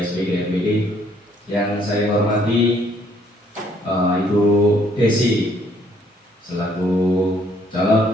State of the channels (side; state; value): both; normal; correlation 0.65